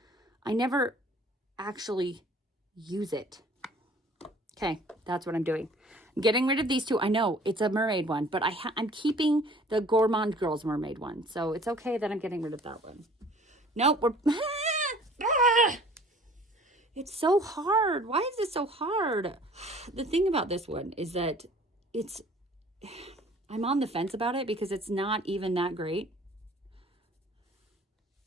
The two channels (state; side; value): normal; both; correlation 0.51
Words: I never actually use it. Okay, that's what I'm doing. I'm getting rid of these 2. I know it's a mermaid one, but I'm keeping the Gourmande Girls mermaid one. So it's okay that I'm getting rid of that one. Nope, it's so hard. Why is this so hard? The thing about this one is that I'm on the fence about it because it's not even that great.